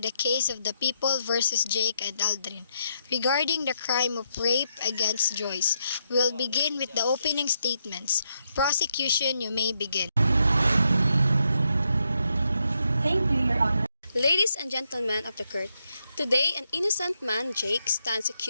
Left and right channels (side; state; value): both; inverted; correlation -0.80